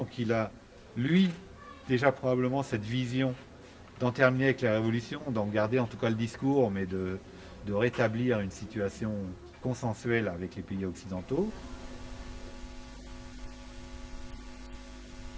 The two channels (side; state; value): both; identical; correlation 1.00